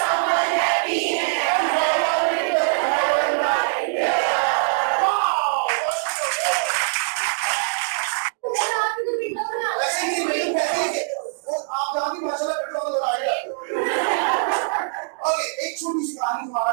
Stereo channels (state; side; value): silent; left; digital silence